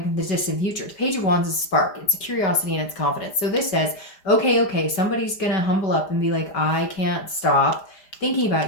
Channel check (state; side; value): late; right; 5.0 ms